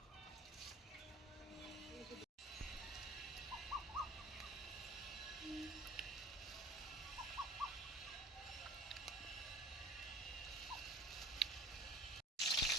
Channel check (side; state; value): both; normal; correlation 0.45